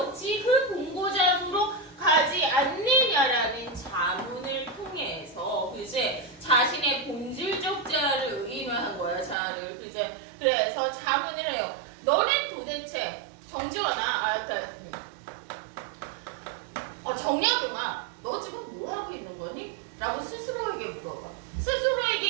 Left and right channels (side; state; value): left; drops out; at 9.3 s